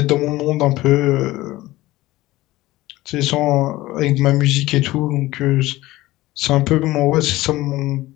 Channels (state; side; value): quieter; right; 17.7 dB